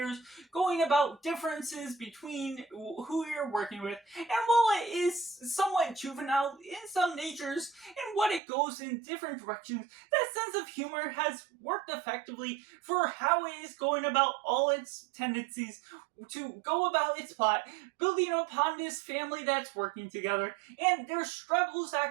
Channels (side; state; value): left; drops out; at 8.4 s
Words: going about differences between who you're working with, and while it is somewhat juvenile in some natures and what it goes in different directions, that sense of humor has worked effectively for how it is going about all its tendencies to go about its plot, building upon this family that's working together, and their struggles